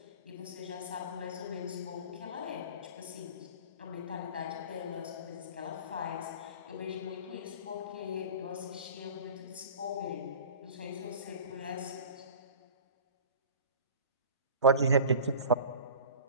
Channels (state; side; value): inverted; both; correlation -0.38